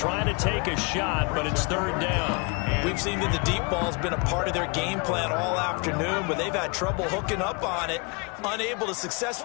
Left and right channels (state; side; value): quieter; right; 31.4 dB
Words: to take a shot, but it's 3rd down. We've seen that the deep ball's been a part of their game plan all afternoon, but they've had trouble hooking up on it, unable to